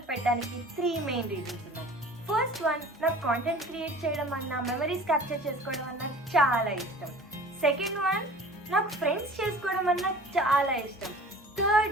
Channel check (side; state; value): both; normal; correlation 0.44